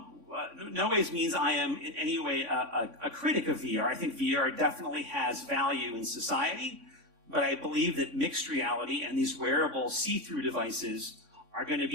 ways means I am in any way a critic of VR. I think VR definitely has value in society, but I believe that mixed reality and these wearable see-through devices are going to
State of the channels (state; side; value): late; left; 3.5 ms